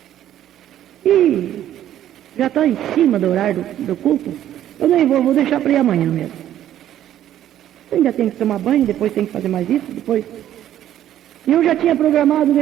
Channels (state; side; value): quieter; left; 11.8 dB